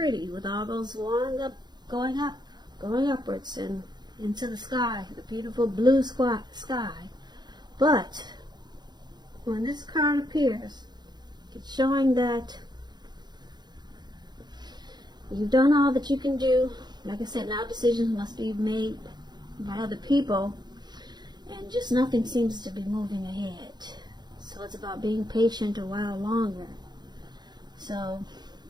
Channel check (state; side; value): late; left; 0.21 ms